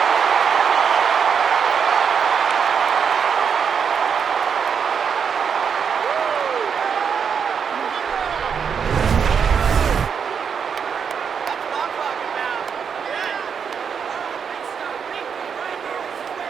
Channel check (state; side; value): quieter; left; 6.8 dB